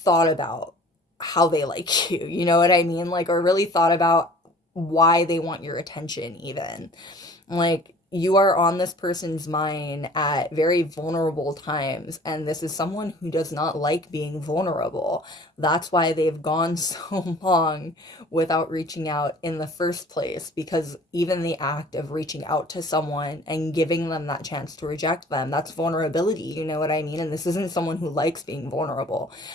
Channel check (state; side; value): normal; both; correlation 0.48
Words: about how they like you, you know what I mean? Like, or really thought about why they want your attention, even. Like, you are on this person's mind at very vulnerable times, and this is someone who does not like being vulnerable. That's why they've gone so long without reaching out in the first place, because even the act of reaching out to someone and giving them that chance to reject them, that's vulnerability, you know what I mean? And this isn't someone who likes being vulnerable.